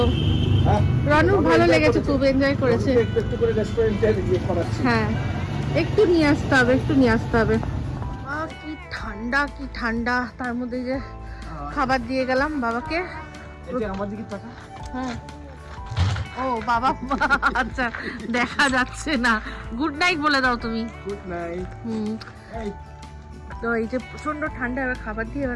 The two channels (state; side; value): identical; both; correlation 1.00